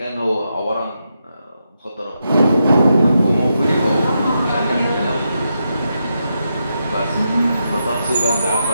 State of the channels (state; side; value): inverted; both; correlation -0.85